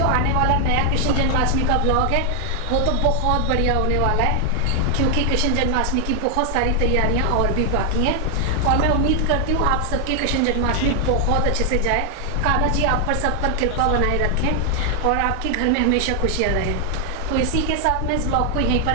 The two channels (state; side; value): different; both; correlation 0.00